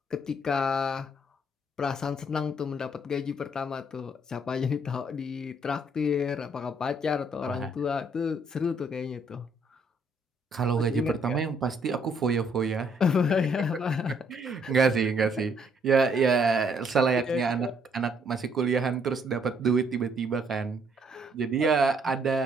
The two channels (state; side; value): normal; both; correlation 0.67